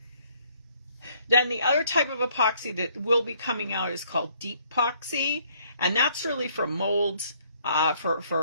Then the other type of epoxy that will be coming out is called deep epoxy, and that's really for molds,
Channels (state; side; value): inverted; both; correlation -0.65